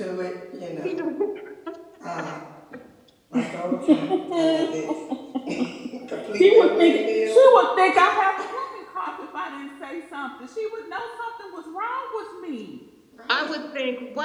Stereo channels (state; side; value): identical; both; correlation 1.00